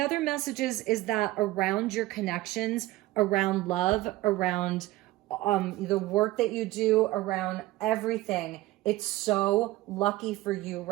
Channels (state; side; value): quieter; left; 17.8 dB